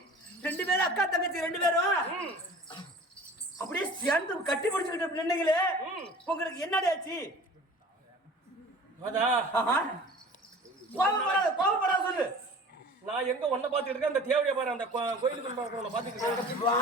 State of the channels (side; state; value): both; normal; correlation 0.43